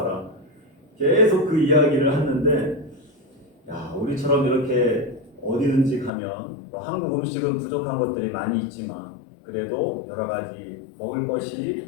계속 그 이야기를 하는데, 야, 우리처럼 이렇게 어디든지 가면 뭐 한국 음식은 부족한 것들이 많이 있지만 그래도 여러 가지 먹을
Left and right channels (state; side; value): drops out; right; at 6.1 s